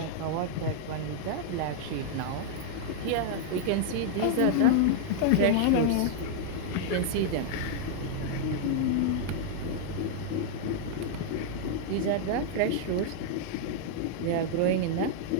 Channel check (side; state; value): both; different; correlation -0.01